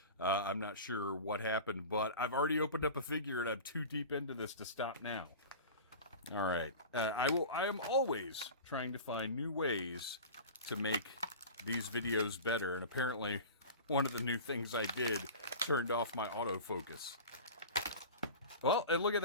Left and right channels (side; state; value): both; inverted; correlation -0.34